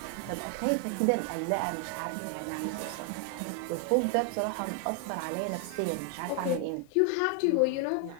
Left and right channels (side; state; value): both; different; correlation 0.00